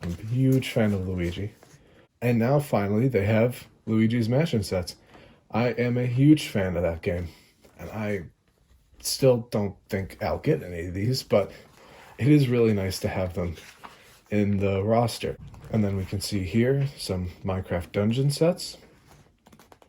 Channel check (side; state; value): both; identical; correlation 1.00